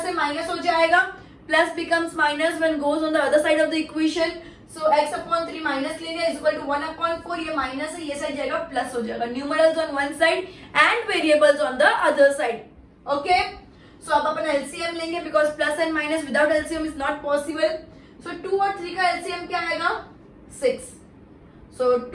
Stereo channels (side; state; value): both; identical; correlation 1.00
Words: से माइनस हो जाएगा, plus becomes minus when goes on the other side of the equation. So x upon 3 minus ले लिया इज इक्वल टू 1 upon 4, ये माइनस है, ये साइड जाएगा प्लस हो जाएगा. Numerals on one side and variables on the other side. Okay, so अब अपन एलसीएम लेंगे because plus and minus without LCM is not possible. So 2 और 3 का एलसीएम क्या आएगा? 6. सो